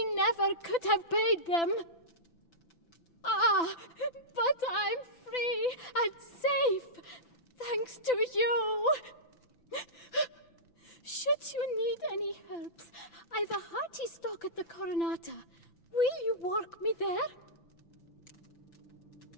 never could have paid them. Ah, but I'm free and safe, thanks to you. Should you need any herbs, I've a hearty stock at the Coronata. Will you walk me there?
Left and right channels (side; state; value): right; late; 5.9 ms